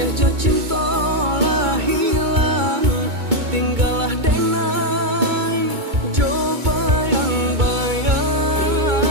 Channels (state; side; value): late; left; 2.2 ms